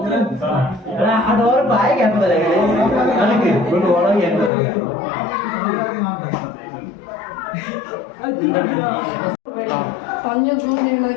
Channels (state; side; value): drops out; right; at 4.5 s